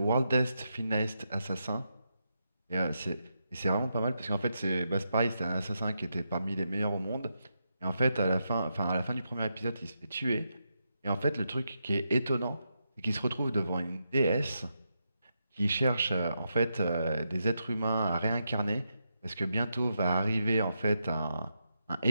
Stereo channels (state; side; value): inverted; both; correlation -0.84